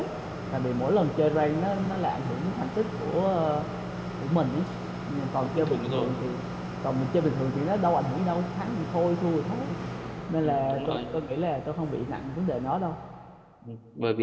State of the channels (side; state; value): both; identical; correlation 1.00